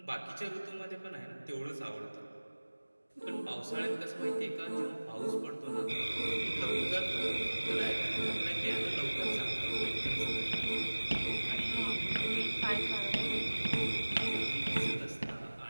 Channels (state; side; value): inverted; both; correlation -1.00